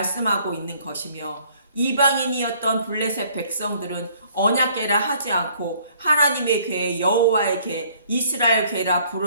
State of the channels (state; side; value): inverted; both; correlation -0.60